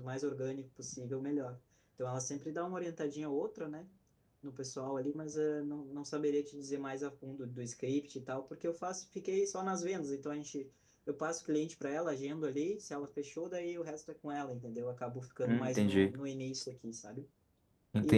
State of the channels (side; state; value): both; identical; correlation 1.00